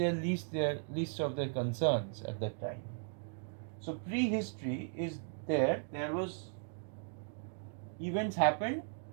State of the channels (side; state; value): left; silent; digital silence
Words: least of their concerns at that time. So prehistory is there. There was events happened